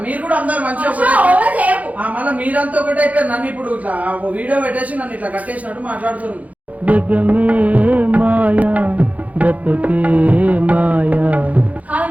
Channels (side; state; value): left; late; 0.072 ms